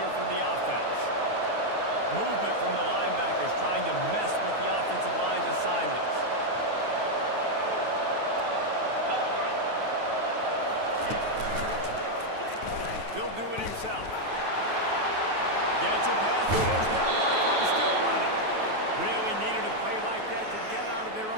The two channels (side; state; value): left; late; 9.3 ms